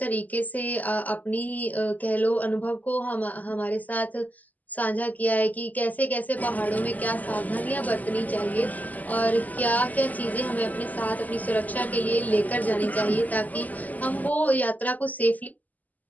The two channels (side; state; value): right; late; 0.080 ms